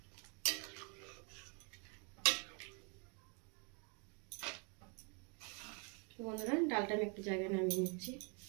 বন্ধুরা, ডালটা আমি একটু জায়গায় নামিয়ে নিচ্ছি।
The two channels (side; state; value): left; quieter; 36.9 dB